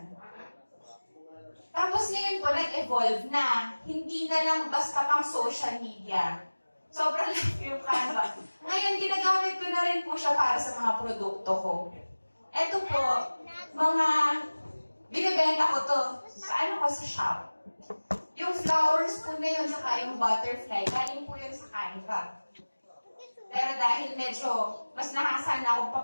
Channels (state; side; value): inverted; both; correlation -1.00